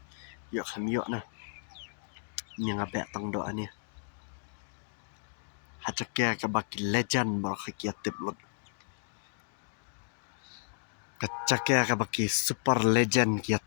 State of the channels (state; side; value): silent; right; digital silence